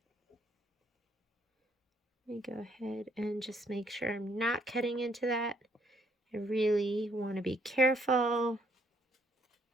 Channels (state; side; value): normal; both; correlation 0.68